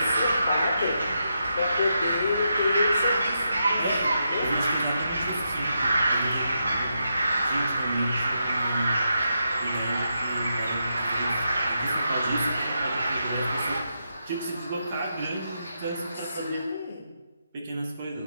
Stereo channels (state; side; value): inverted; both; correlation -0.83